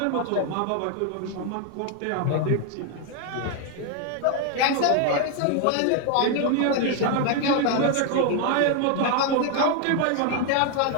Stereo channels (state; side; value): different; both; correlation 0.01